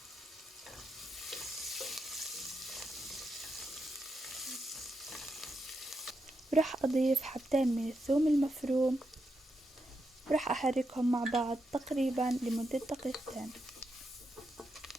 ورح أضيف حبتين من الثوم المفروم، ورح أحركهم مع بعض تقريبا لمدة دقيقتين.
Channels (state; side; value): normal; both; correlation 0.84